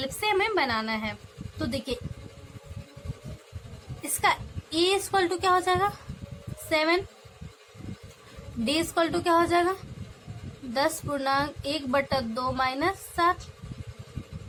से हमें बनाना है। तो देखिए इसका a इक्वल टू क्या हो जाएगा 7, डी इक्वल टू क्या हो जाएगा 10/1/2 माइनस 7,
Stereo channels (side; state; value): both; identical; correlation 1.00